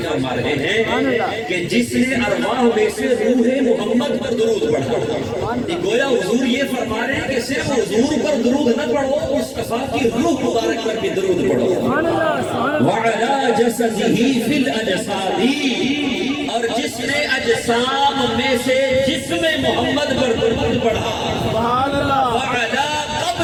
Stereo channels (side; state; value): both; identical; correlation 1.00